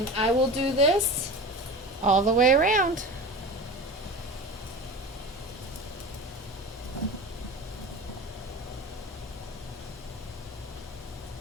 I will do this all the way around.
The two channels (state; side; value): normal; both; correlation 0.32